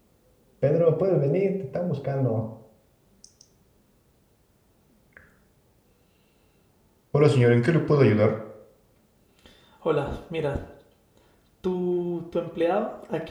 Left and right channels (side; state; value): both; identical; correlation 1.00